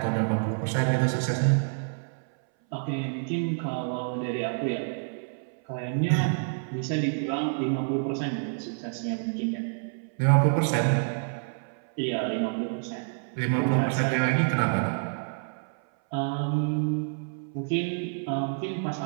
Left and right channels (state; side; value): silent; left; 59 dB below the other